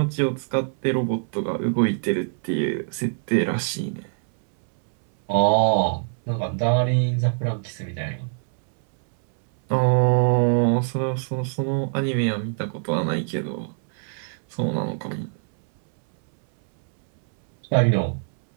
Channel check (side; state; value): left; silent; 63 dB below the other